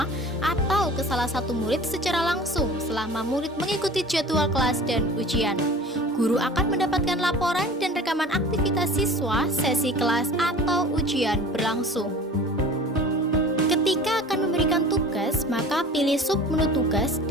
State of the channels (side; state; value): both; normal; correlation 0.41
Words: atau ke salah satu murid secara langsung selama murid mengikuti jadwal kelas dan ujian. Guru akan mendapatkan laporan dan rekaman aktivitas siswa, sesi kelas atau ujian berlangsung. Ketika akan memberikan tugas, maka pilih submenu tugas